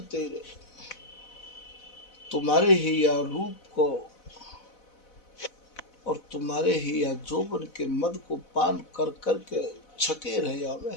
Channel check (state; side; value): late; right; 4.0 ms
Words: तेरे, तुम्हारे ही या रूप को और तुम्हारे ही या जोबन के मद को पान कर करके छके रहे आवे